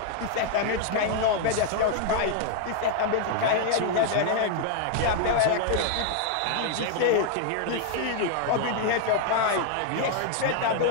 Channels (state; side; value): different; both; correlation 0.00